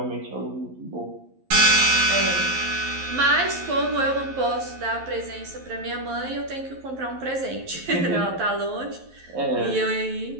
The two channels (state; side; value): late; left; 11 ms